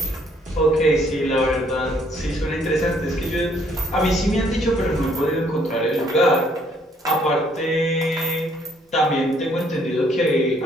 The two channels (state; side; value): normal; both; correlation 0.65